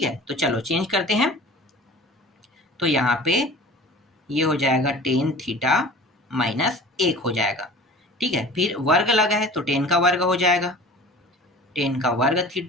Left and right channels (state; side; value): normal; both; correlation 0.41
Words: है, तो चलो चेंज करते हैं, तो यहाँ पे ये हो जाएगा 10 थीटा माइनस 1 हो जाएगा। ठीक है, फिर वर्ग लगा है तो 10 का वर्ग हो जाएगा, 10 का वर्ग